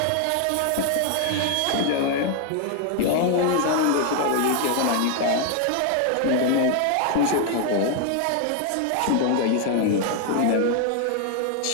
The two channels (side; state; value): both; different; correlation 0.00